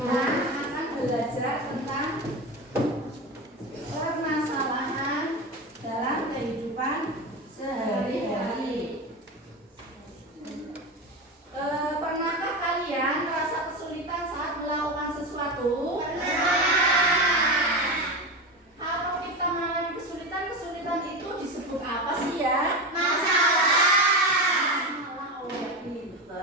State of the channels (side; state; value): both; normal; correlation 0.20